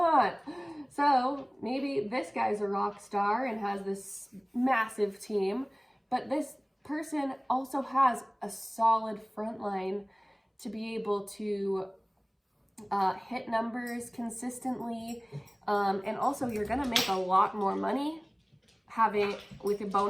So maybe this guy's a rock star and has this massive team, but this person also has a solid front line to be able to hit numbers consistently. And also you're gonna make a lot more money with your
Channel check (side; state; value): both; identical; correlation 1.00